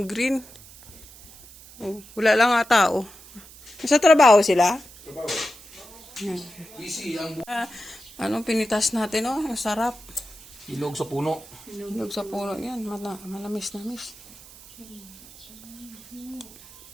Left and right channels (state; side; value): noise; right; hiss, 20 dB below the sound